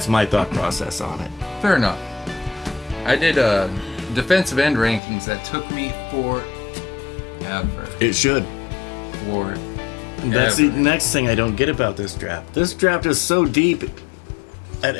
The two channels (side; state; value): right; drops out; at 5.0 s